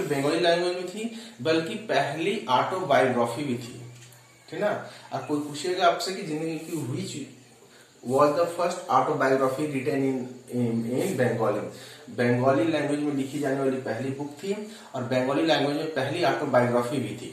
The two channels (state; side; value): identical; both; correlation 1.00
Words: बंगाली लैंग्वेज में थी, बल्कि पहली ऑटोबायोग्राफी भी थी, ठीक ना। अब कोई पूछेगा आपसे कि जिंदगी की which was the first autobiography written in Bengali, Bengali language में लिखी जाने वाली पहली बुक थी और बंगाली लैंग्वेज में पहली ऑटोबायोग्राफी भी